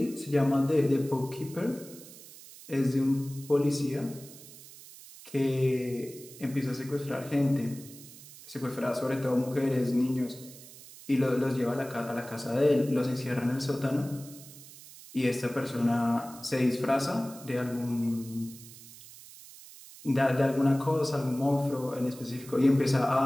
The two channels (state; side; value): noise; right; hiss, 18 dB below the sound